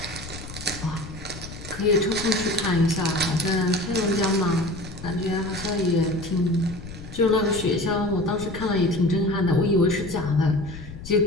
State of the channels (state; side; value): noise; left; rumble, 13 dB below the sound